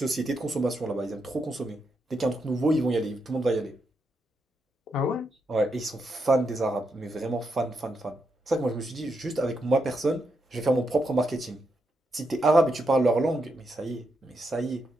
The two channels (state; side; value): normal; both; correlation 0.82